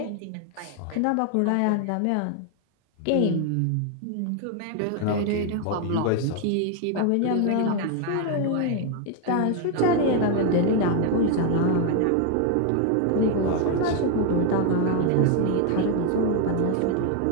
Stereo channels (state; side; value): different; both; correlation 0.00